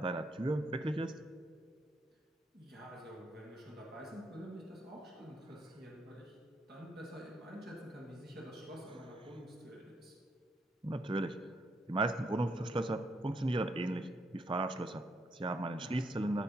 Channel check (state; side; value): normal; both; correlation 0.76